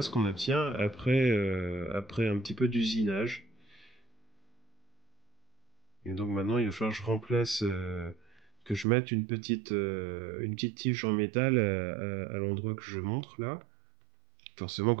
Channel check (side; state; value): left; drops out; at 8.8 s